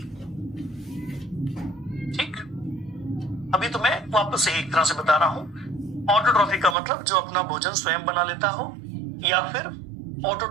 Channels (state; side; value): drops out; left; at 6.8 s